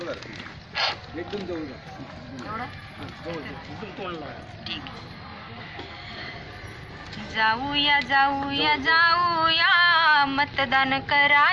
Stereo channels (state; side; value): identical; both; correlation 1.00